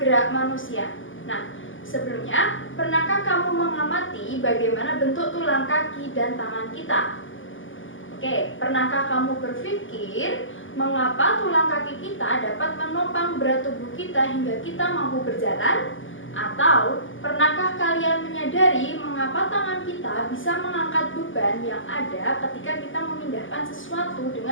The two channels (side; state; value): right; late; 0.57 ms